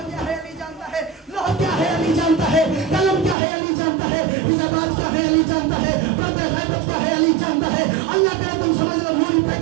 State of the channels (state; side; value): drops out; left; at 3.4 s